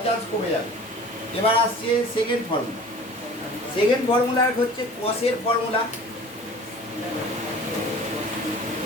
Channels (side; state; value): both; normal; correlation 0.43